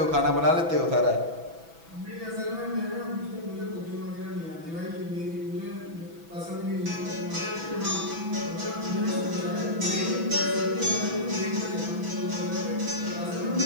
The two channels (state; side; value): late; left; 6.0 ms